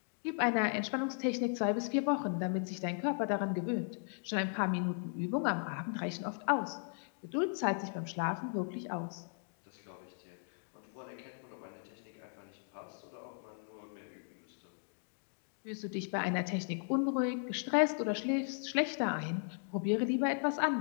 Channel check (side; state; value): right; silent; 53 dB below the other